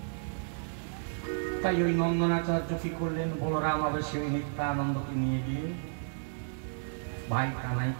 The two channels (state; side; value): silent; left; 56 dB below the other